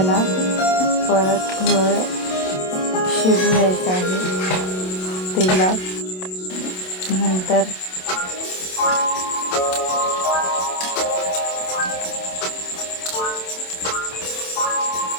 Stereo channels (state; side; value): late; right; 27 ms